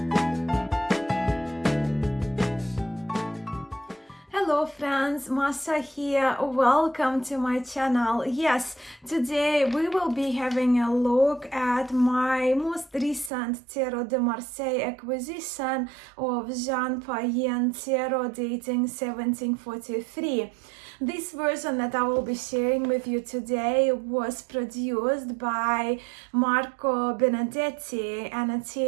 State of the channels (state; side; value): drops out; left; at 13.3 s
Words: Hello friends, Masha here. Welcome to my channel. Yes, today we will be having a look at my most recent Tarot de Marseille acquisition of Jean Payen Tarot dating 1743. This version that I will be sharing with you today was produced by Marco Benedetti, an